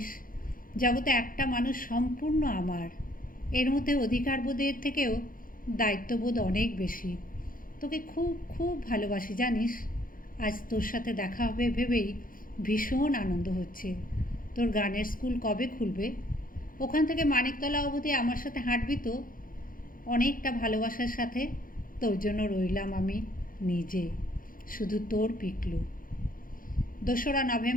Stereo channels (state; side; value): late; right; 0.40 ms